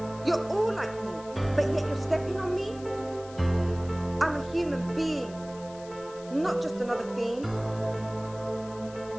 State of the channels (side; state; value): left; noise; hiss, 21 dB below the sound